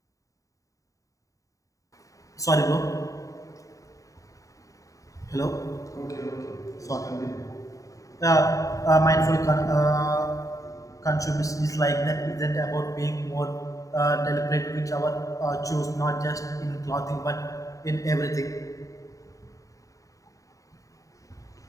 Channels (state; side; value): late; right; 0.16 ms